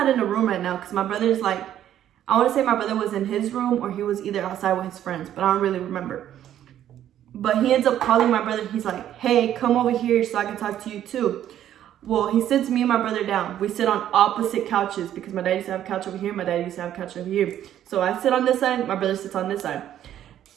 in the room right now because my brother's like, I want to say my brother was in his room or he was either outside with his friends, but I don't really remember. But he ends up calling my brother. He's like, hey, come over here so I can talk to you too. Well, he sits me and my brother down. We sit on opposite couches because my dad used to have a couch over here. My dad used to have a couch over here. So I sit on this side. My brother sits on this side.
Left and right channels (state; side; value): quieter; left; 11.2 dB